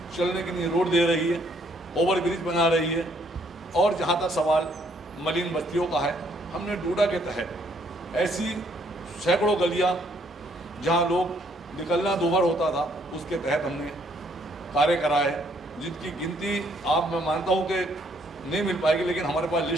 चलने के लिए रोड दे रही है, ओवर ब्रिज बना रही है। और जहाँ तक सवाल मलिन बस्तियों का है, हमने डूडा के तहत ऐसी सैकड़ों गलियाँ जहाँ लोग निकलना दूभर होता था, उसके तहत हमने कार्य कराए, जिनकी गिनती आप, मैं मानता हूँ कि नहीं मिल पाएगी, लेकिन हमारे पास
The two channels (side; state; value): both; normal; correlation 0.67